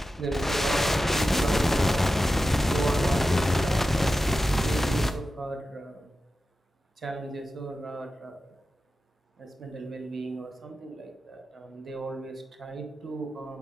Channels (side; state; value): both; normal; correlation 0.92